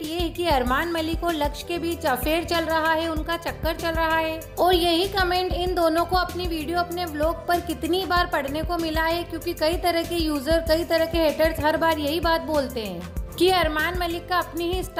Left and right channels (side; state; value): both; identical; correlation 1.00